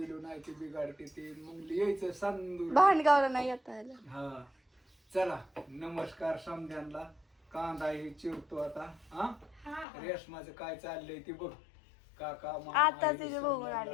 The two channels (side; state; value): right; drops out; at 9.9 s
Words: नाही ते बिघाडते ते मग यायचं सांदूर भांडगावला नाही येता आलं हा चला नमस्कार समध्यांना कांदा हे चिरतो आता हा रेशमाचं काय चाललंय ते बघ काका आता तिथे बघून